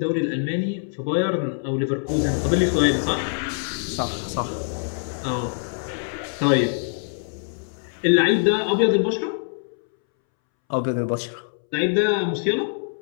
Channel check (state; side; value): silent; right; 63 dB below the other